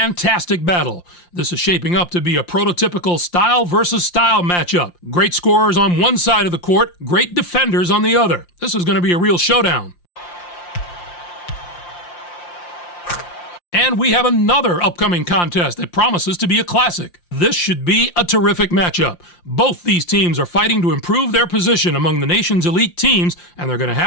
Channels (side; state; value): right; late; 5.7 ms